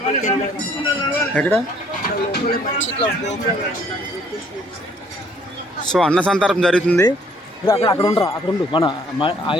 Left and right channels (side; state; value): both; normal; correlation 0.62